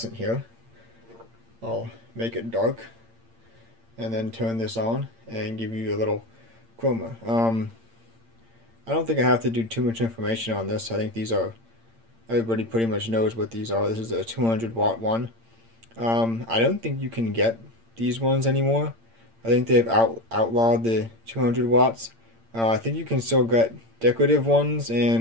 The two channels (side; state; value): left; late; 8.8 ms